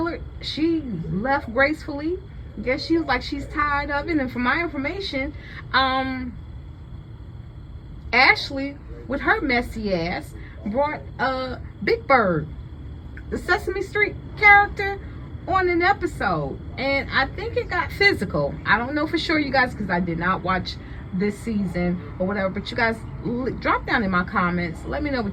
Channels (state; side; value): identical; both; correlation 1.00